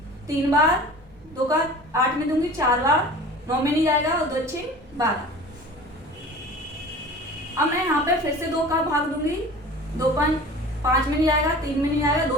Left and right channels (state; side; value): normal; both; correlation 0.41